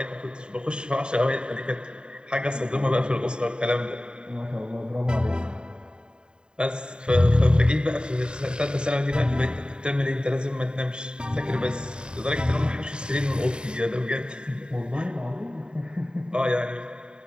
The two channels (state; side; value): late; left; 0.049 ms